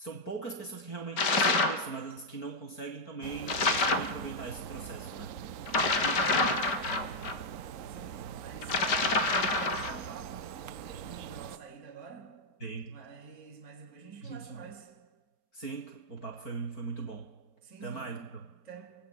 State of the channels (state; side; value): late; right; 4.4 ms